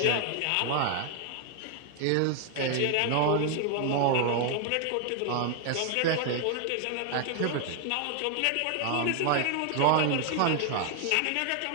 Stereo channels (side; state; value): both; different; correlation 0.00